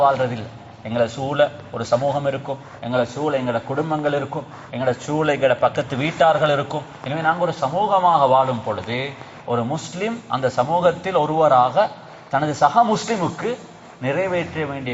வாழ்றதில்லை. எங்களை சூழ ஒரு சமூகம் இருக்கும், எங்களை சூழ எங்களோட குடும்பங்கள் இருக்கும், எங்களோட சூழ எங்களோட பக்கத்து வீட்டார்கள் இருக்கும். எனவே நாங்கள் ஒரு சமூகமாக வாழும் பொழுது ஒரு முஸ்லிம் அந்த சமூகத்தில் ஒருவராக தனது சக முஸ்லிமுக்கு நிறைவேற்ற வேண்டிய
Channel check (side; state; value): both; identical; correlation 1.00